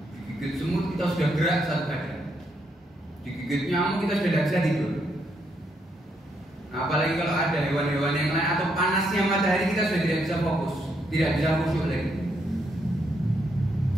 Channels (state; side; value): normal; both; correlation 0.76